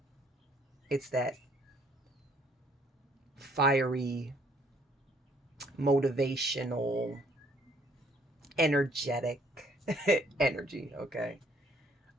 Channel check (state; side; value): normal; both; correlation 0.63